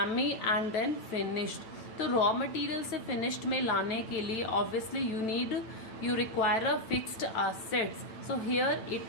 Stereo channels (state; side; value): late; right; 9.0 ms